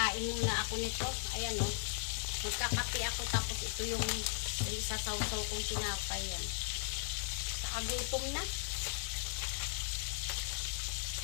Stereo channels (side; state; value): right; silent; 53 dB below the other